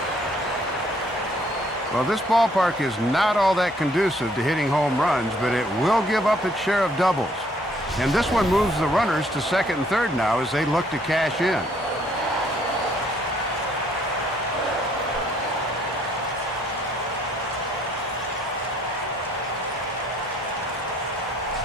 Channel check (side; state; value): both; normal; correlation 0.65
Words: Well, this ballpark is not all that conducive to hitting home runs, but it will give up its share of doubles. And this one moves the runners to second and third now as they look to cash in.